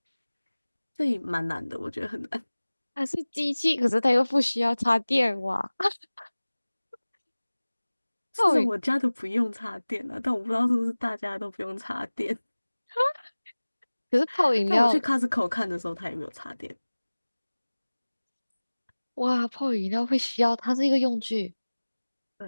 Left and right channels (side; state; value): both; inverted; correlation -1.00